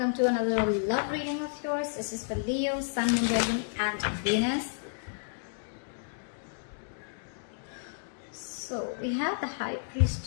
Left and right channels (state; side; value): silent; right; digital silence